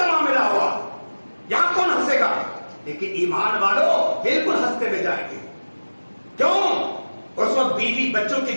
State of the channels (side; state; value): both; inverted; correlation -1.00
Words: معاملہ ہوا، یہاں کون ہنسے گا؟ لیکن ایمان والو بالکل ہنستے ہوئے جائیں گے. کیوں؟ اس وقت بیوی بچوں